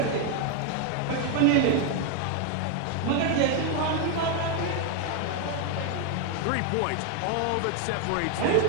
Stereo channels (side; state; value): both; different; correlation 0.01